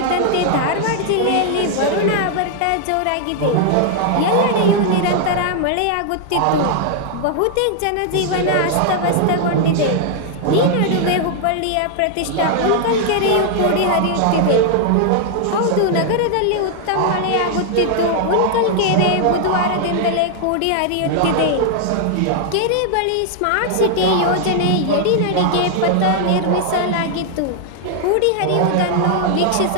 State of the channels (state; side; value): different; both; correlation 0.00